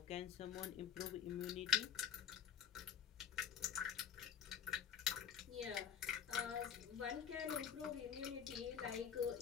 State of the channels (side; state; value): right; quieter; 8.4 dB